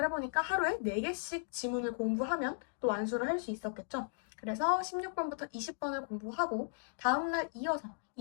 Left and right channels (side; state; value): right; silent; digital silence